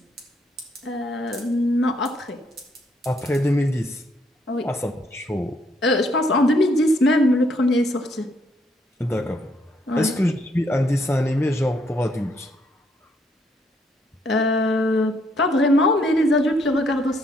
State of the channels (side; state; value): both; normal; correlation 0.71